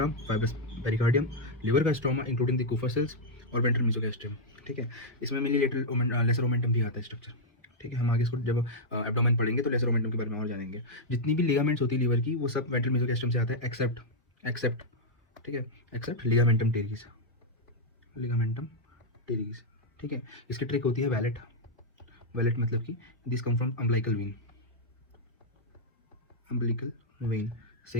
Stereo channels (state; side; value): normal; both; correlation -0.04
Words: fibrous pericardium, liver का stroma including the Kupffer cells और वेंट्रल मीसोगैस्ट्रियम। ठीक है? इसमें मेनली लेसर ओमेंटम भी आता है स्ट्रक्चर। ठीक है? हम आगे इसको जब एब्डोमेन पढ़ेंगे तो लेसर ओमेंटम के बारे में और जानेंगे। जितनी भी लिगामेंट्स होती है लीवर की वो सब वेंट्रल मीसोगैस्ट्रियम से आता है, एक्सेप्ट एक्सेप्ट ठीक है, except ligamentum teres, ligamentum teres. ठीक है? इसकी ट्रिक होती है वैलेट। वैलेट मतलब कि this come from umbilical when, umbilical when